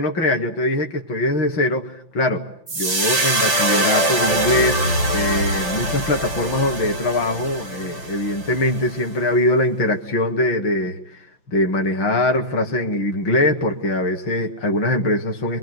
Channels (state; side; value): late; right; 5.8 ms